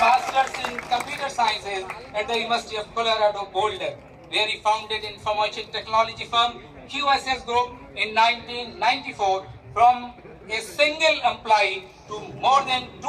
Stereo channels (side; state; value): both; identical; correlation 1.00